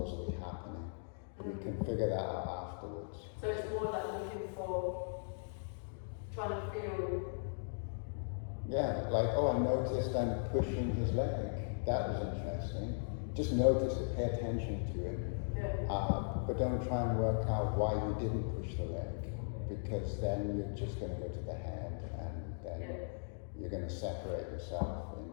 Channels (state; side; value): silent; right; digital silence